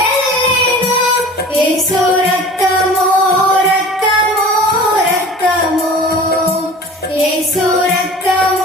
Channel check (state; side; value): normal; both; correlation 0.41